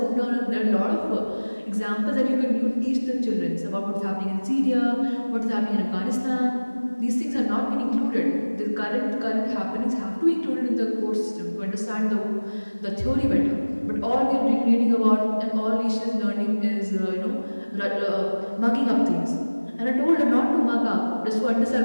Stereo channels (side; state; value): both; inverted; correlation -1.00